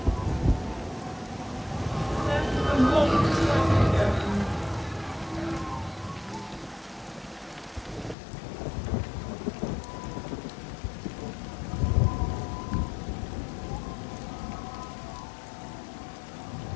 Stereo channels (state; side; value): drops out; right; at 8.2 s